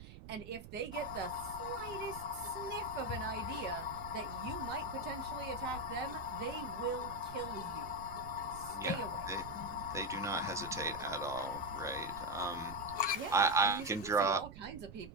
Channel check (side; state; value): right; noise; rumble, 13 dB below the sound